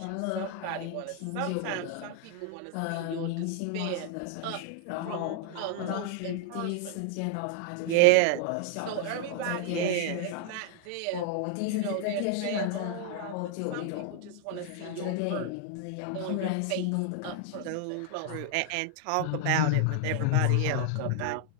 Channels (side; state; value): both; different; correlation 0.00